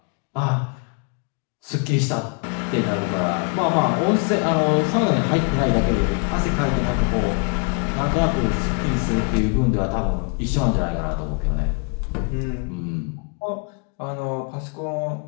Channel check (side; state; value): right; quieter; 35.4 dB